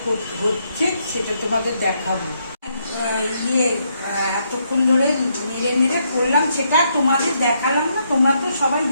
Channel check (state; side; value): inverted; both; correlation -0.76